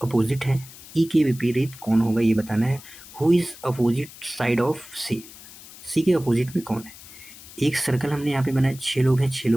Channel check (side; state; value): left; noise; hiss, 18 dB below the sound